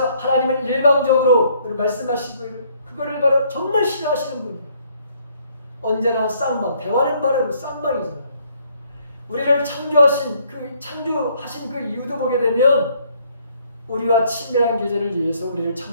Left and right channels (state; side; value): inverted; both; correlation -0.66